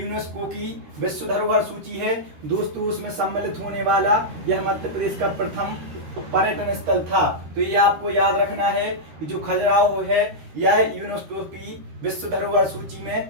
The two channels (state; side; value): late; left; 13 ms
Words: की विश्व धरोहर सूची है दोस्तों, उसमें सम्मिलित होने वाला यह मध्य प्रदेश का प्रथम पर्यटन स्थल था। तो ये आपको याद रखना है कि जो खजुराहो है यह यूनेस्को की विश्व धरोहर सूची